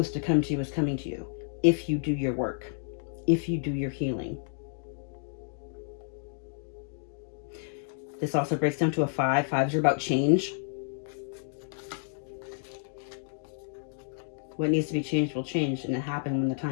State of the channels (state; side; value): silent; right; digital silence